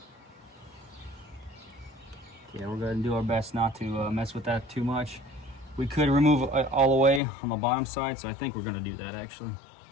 yeah, we're going to do our best not to mess with that too much. We could remove it all the way on the bottom side, so I think we're going to do that actually.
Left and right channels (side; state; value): right; drops out; at 7.2 s